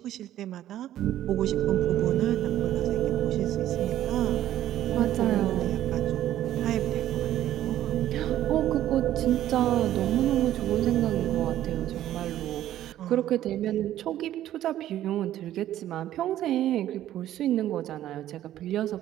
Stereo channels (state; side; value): quieter; left; 12.7 dB